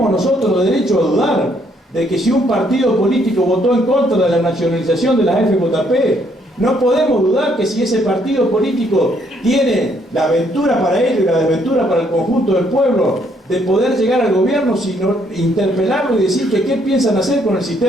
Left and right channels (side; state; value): both; normal; correlation 0.69